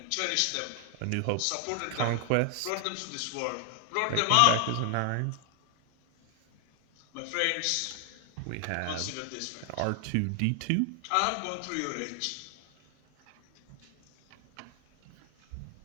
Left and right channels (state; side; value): different; both; correlation 0.00